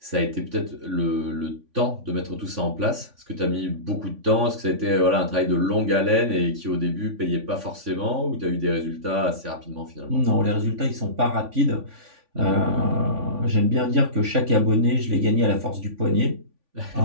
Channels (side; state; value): left; late; 3.5 ms